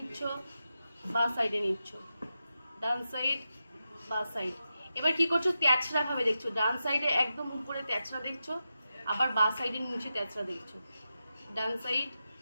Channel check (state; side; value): inverted; both; correlation -0.90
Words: বাঁ সাইডে নিচ্ছ, ডান সাইড, বাঁ সাইড। এবার কি করছো, তেছড়া ভাবে দেখছো। ডান সাইডে একদম উপরে তেছড়া দেখছো, আবার বাঁ সাইডে নিচে তেছড়া দেখছো। ডান সাইড